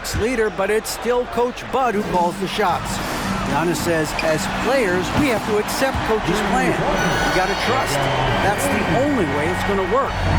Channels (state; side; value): identical; both; correlation 1.00